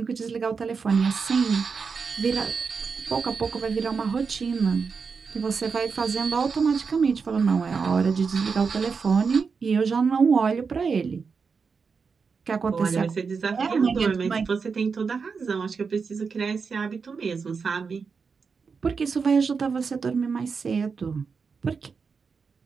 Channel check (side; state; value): left; quieter; 5.3 dB